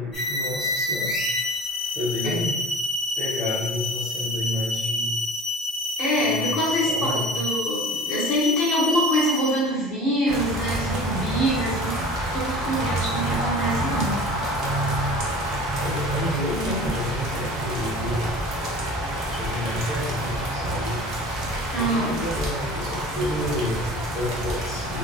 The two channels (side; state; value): both; normal; correlation 0.42